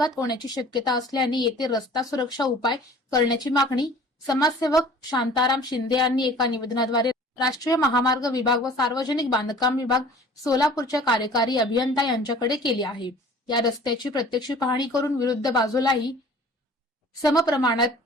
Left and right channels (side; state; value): both; normal; correlation 0.47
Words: होण्याची शक्यता असल्याने येथे रस्ता सुरक्षा उपाय करण्याची मागणी समाजसेवक शांताराम शिंदे यांनी एका निवेदनाद्वारे राष्ट्रीय महामार्ग विभाग व सार्वजनिक बांधकाम विभाग सोलापूरच्या कार्यकारी अभियंता यांच्याकडे केली आहे। या रस्त्याची प्रत्यक्ष पाहणी करून विरुद्ध बाजूलाही समप्रमाणात